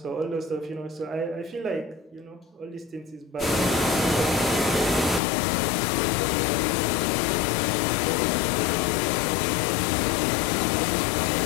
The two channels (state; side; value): drops out; right; at 5.2 s